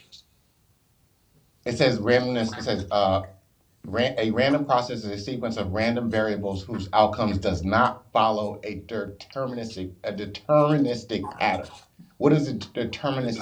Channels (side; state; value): both; identical; correlation 1.00